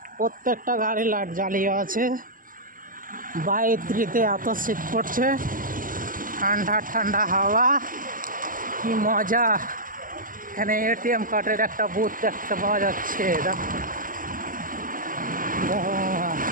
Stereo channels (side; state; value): left; late; 0.40 ms